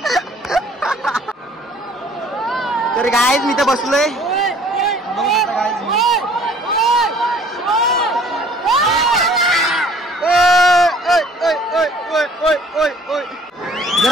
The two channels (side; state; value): both; normal; correlation 0.55